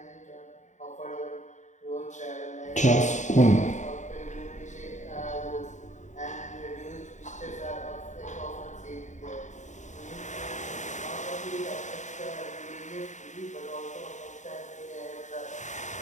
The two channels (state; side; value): late; right; 0.35 ms